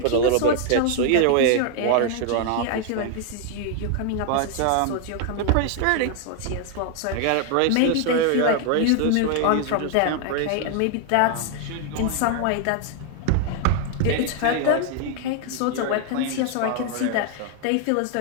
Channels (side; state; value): both; different; correlation 0.00